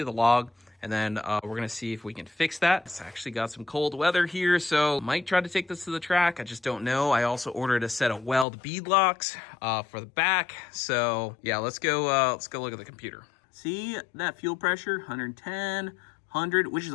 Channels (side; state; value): right; drops out; at 8.5 s